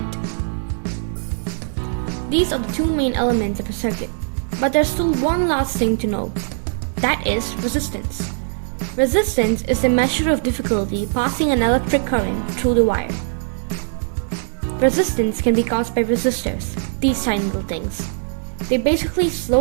These are the two main elements of a circuit, but there's still one last thing to know. That is resistance. Resistance is the measure of difficulty passing an electric current through the wire. Resistance can be caused by resistors, these tiny little things. They basically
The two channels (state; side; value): silent; left; digital silence